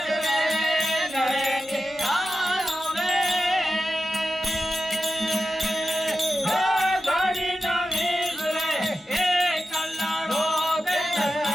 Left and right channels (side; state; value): both; normal; correlation 0.91